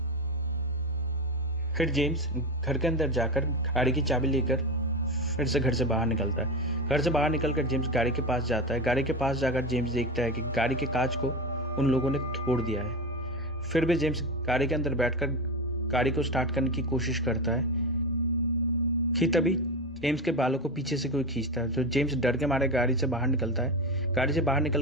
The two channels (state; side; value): normal; both; correlation 0.20